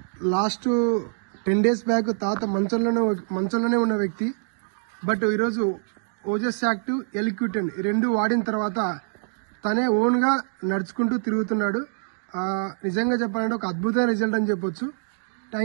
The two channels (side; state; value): left; silent; digital silence